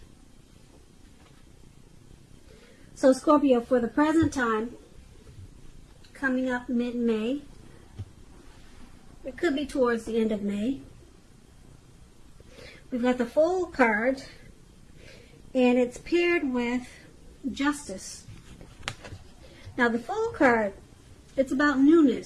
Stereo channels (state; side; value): identical; both; correlation 1.00